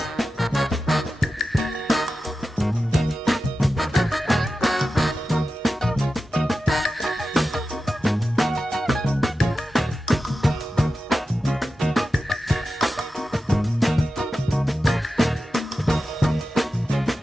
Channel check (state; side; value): normal; both; correlation 0.92